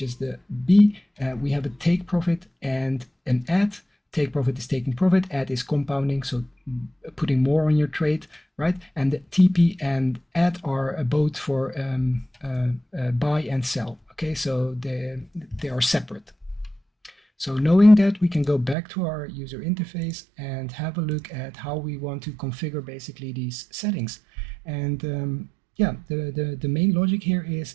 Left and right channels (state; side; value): drops out; left; at 18.8 s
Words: is the B, we have a take profit and an add. Take profit is taking profit, add is compounding, so putting more on your trade, right? And the TP and add are both for buy and sell. Okay, so they are separate. So knowing that, we can go back to our user interface and have a look at how we want to configure basically these settings. And yeah, the main logic here